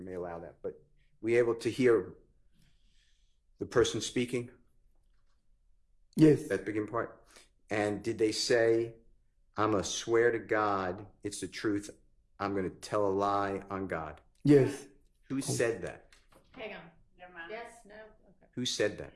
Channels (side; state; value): both; identical; correlation 1.00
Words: may allow that. But were you able to hear the person speaking? Yes. That beginning part? And did they say, I'm a swear to God, it's the truth, I'm going to tell a lie on God? Yes. Who said that? Hang on. Never mind. Yes, no, okay. Who said that?